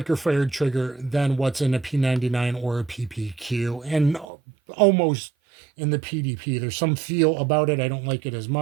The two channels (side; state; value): left; drops out; at 4.2 s